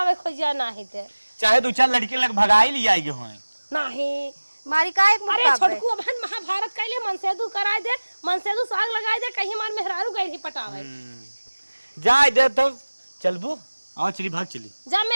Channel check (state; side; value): inverted; both; correlation -1.00